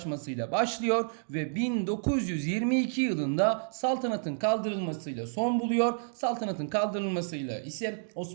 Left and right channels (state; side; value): silent; left; digital silence